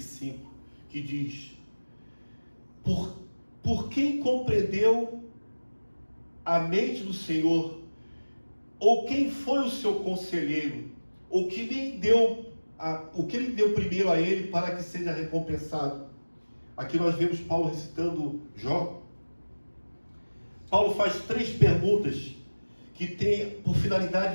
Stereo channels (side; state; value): both; inverted; correlation -1.00